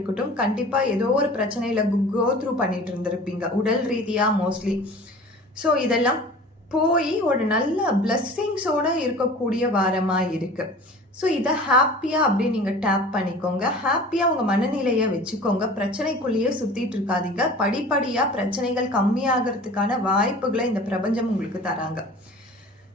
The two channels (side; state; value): both; normal; correlation 0.42